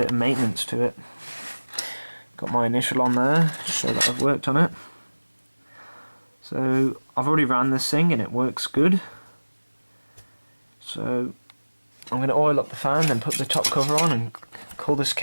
of maintenance to it. Got my initial on there to show that I've worked on it. So I've already ran this thing and it works good. So I'm going to oil up the fan, then put the top cover on and call this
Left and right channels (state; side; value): inverted; both; correlation -1.00